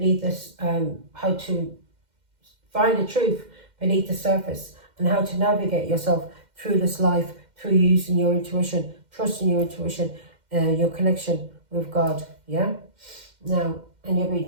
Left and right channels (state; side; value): late; left; 2.1 ms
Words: this how to find the truth beneath the surface, and how to navigate yourself through this life through using your intuition, trusting your intuition, your connection with God. Yeah. Now, and you're